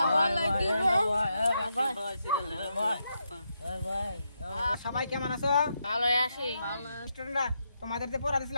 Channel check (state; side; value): inverted; both; correlation -0.82